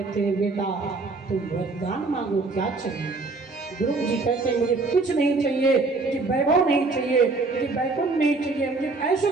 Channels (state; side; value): quieter; left; 3.6 dB